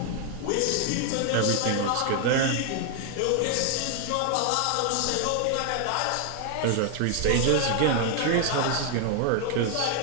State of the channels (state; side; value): different; both; correlation 0.00